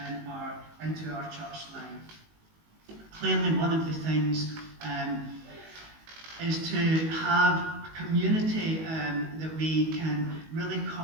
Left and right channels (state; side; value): late; left; 19 ms